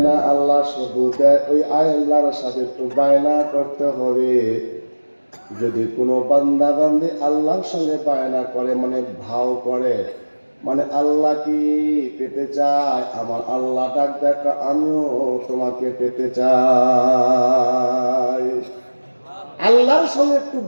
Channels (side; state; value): both; inverted; correlation -1.00